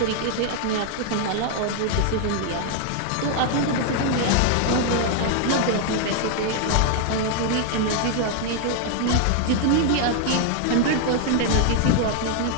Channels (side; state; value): both; different; correlation 0.00